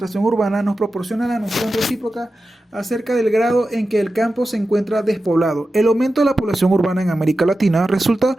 urbana nos proporciona la noción recíproca acerca del grado en que el campo se encuentra despoblado. El aumento de la población urbana en América Latina resulta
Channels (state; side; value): normal; both; correlation 0.93